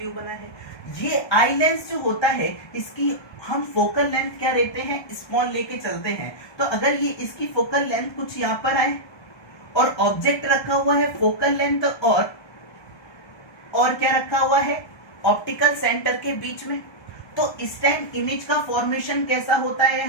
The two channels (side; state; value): right; late; 1.3 ms